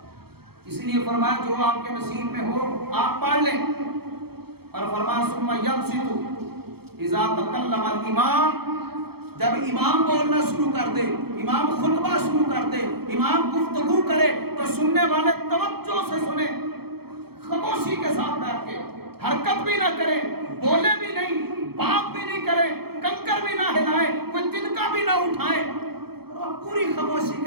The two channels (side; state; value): left; late; 0.96 ms